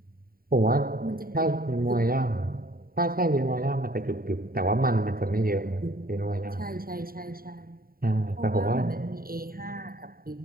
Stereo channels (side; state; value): left; late; 0.43 ms